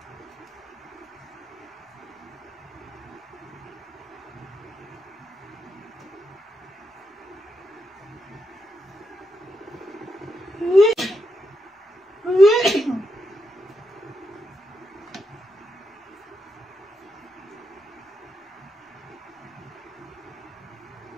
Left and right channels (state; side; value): normal; both; correlation 0.83